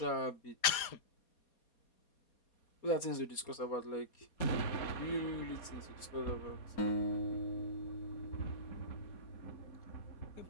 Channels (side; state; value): right; late; 4.2 ms